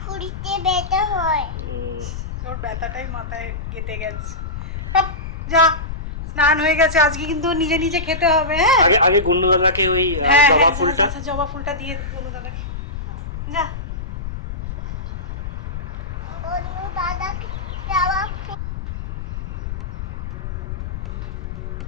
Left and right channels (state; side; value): noise; left; rumble, 6 dB below the sound